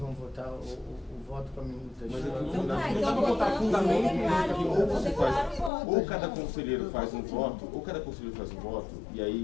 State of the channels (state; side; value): drops out; right; at 5.7 s